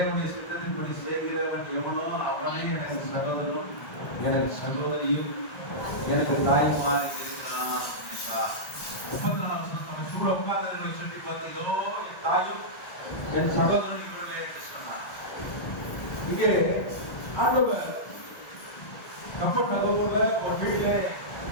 சித்தத்தின்படி செய்கிறவன் எவனோ அவனே எனக்கு சகோதரனும் எனக்கு சகோதரியும் எனக்கு தாய்மார் இருக்கிறான் என்றார். 34ஆம் வசனம் சூழ உட்கார்ந்தவர்களை சுற்றி பார்த்து, இதோ என் தாயும் என் சகோதரன் இவர்களே என்று சொன்னார். இங்கே ஆண்டவர் கப்பல் நகரத்துல ஒரு வீட்டுல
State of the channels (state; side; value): late; right; 1.5 ms